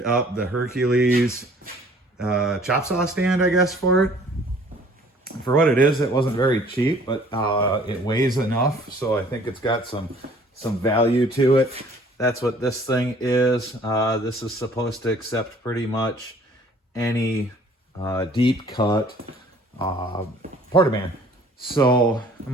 up the Hercules chop saw stand, I guess, for it. For what it is, it wasn't very cheap, but it weighs enough, so I think it's got some value to it. That's what this thing is. This is supposed to accept pretty much any deep cut portaband. So I'm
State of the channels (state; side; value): normal; both; correlation 0.55